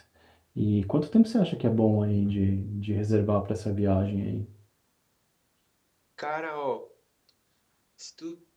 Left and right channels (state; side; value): identical; both; correlation 1.00